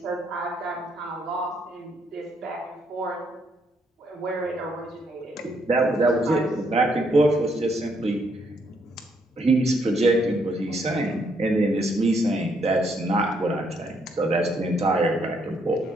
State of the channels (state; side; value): normal; both; correlation 0.73